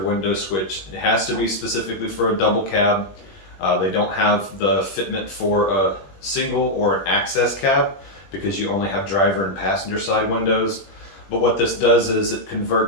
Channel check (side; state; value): right; late; 21 ms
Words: switch. It has to be specifically for a double cab. They don't have the fitment for a single or an access cab because you only have driver and passenger side windows. But what this does is it